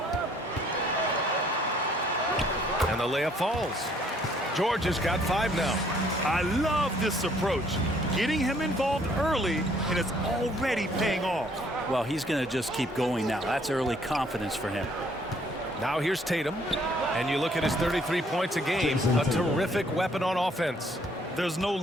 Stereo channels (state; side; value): normal; both; correlation 0.63